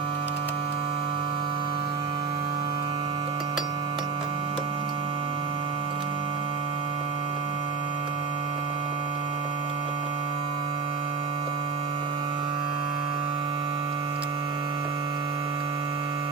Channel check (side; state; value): left; quieter; 5.1 dB